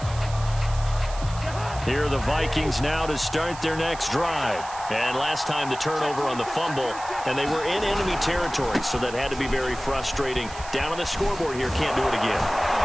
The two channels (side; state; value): right; noise; hiss, 15 dB below the sound